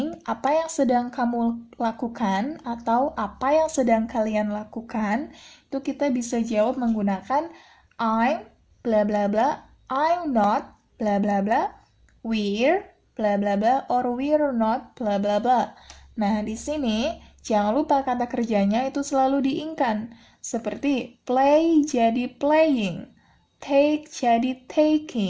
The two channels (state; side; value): identical; both; correlation 1.00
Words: Apa yang sedang kamu lakukan? Atau apa yang sedang kalian lakukan? Itu kita bisa jawab menggunakan I'm, bla bla bla, I'm not, bla bla bla, we're, bla bla bla, or we're not, bla bla bla. Nah, di sini jangan lupa kata kerjanya itu selalu diingkan. Seperti play jadi playing, take jadi